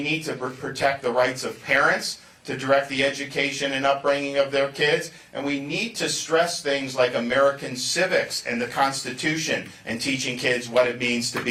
need to protect the rights of parents to direct the education and upbringing of their kids, and we need to stress things like American civics and the Constitution and teaching kids what it means to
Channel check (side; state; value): both; identical; correlation 1.00